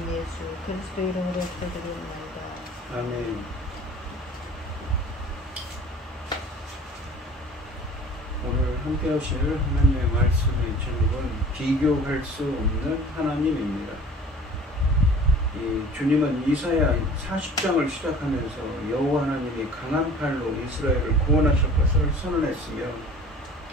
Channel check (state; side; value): normal; both; correlation 0.45